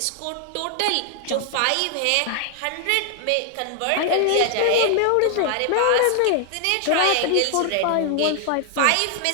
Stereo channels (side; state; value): both; different; correlation 0.00